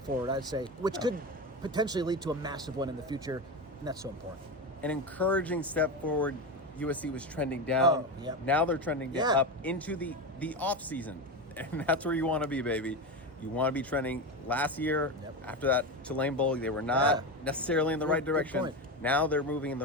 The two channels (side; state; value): both; normal; correlation 0.19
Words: forward, I'd say, which could potentially lead to a massive one in the future, and that's so important. An encouraging step forward. USC was trending down. Now they're trending up into the off season, and that's where you want to be, baby. You want to be trending. Last year, after that Tulane Bowl, they were not necessarily in the right direction. Now they're moving in the